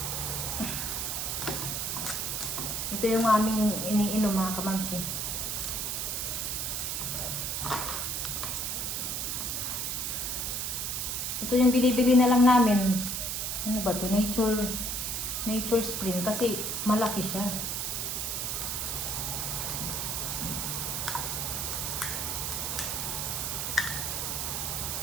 Ito yung aming iniinom mga kamamsi. Ito yung binibili na lang namin. Ano ba to? Nature Spring kasi malaki siya.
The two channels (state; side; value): noise; right; hiss, 1 dB below the sound